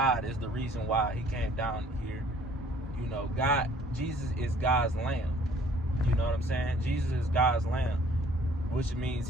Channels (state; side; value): normal; both; correlation 0.57